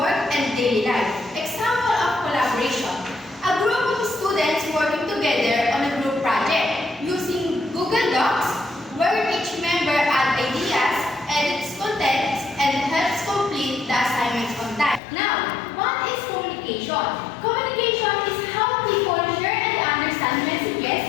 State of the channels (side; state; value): right; drops out; at 15.0 s